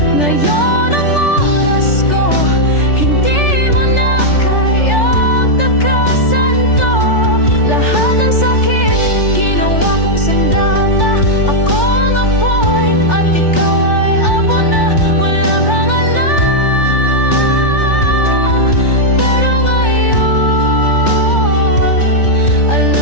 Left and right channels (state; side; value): late; right; 3.4 ms